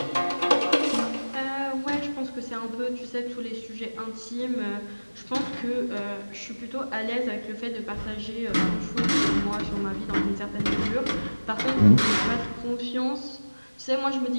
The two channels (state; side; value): inverted; both; correlation -1.00